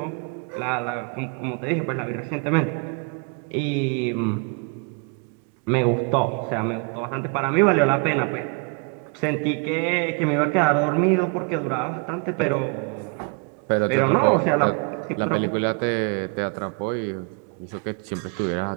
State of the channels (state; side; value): quieter; left; 36.6 dB